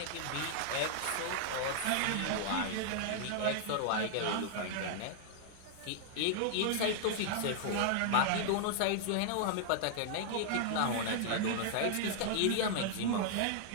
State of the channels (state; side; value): different; both; correlation 0.00